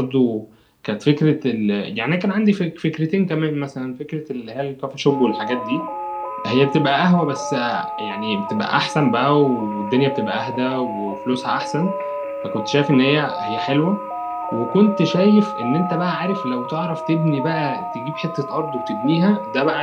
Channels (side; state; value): both; identical; correlation 1.00